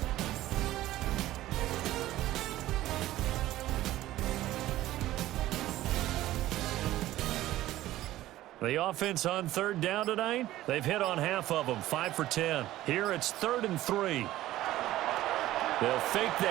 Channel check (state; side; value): quieter; left; 15.2 dB